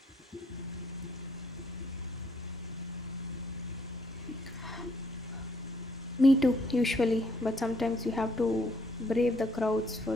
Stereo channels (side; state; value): both; normal; correlation 0.69